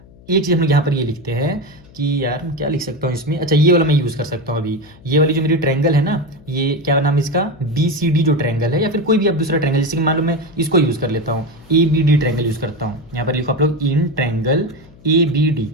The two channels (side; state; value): left; noise; hum, 24 dB below the sound